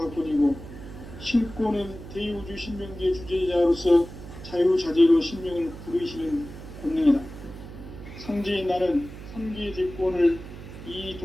신권은 대우주 신명계 주제자로서 자유자재로 신명을 부르시는 권능이다. 상제인 나는 3개의 대권을 이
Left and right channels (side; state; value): right; noise; hum, 13 dB below the sound